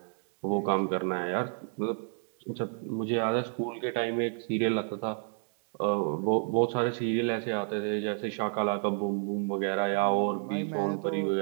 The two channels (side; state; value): left; silent; 58 dB below the other